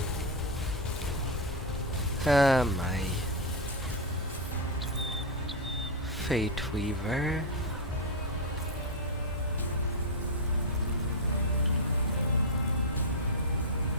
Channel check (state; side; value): normal; both; correlation 0.02